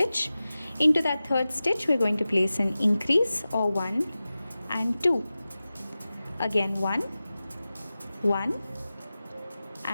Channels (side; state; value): both; inverted; correlation -0.95